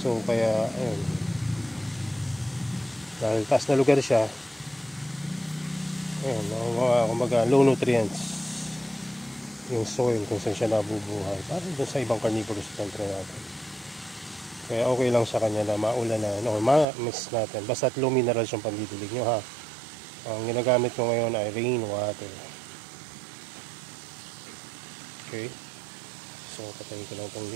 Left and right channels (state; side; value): drops out; left; at 16.9 s